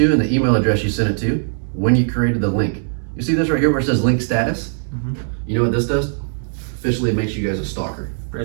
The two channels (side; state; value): left; silent; digital silence